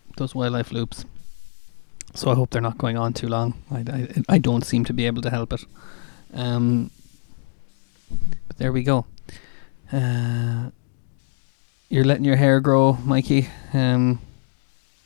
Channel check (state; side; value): silent; right; digital silence